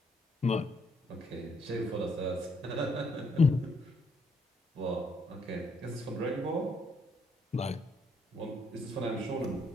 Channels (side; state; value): both; normal; correlation 0.72